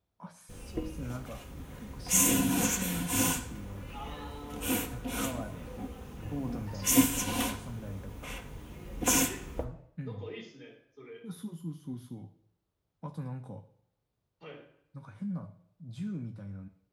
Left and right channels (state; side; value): identical; both; correlation 1.00